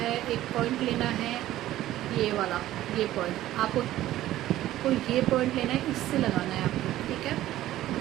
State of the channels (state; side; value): quieter; left; 14.3 dB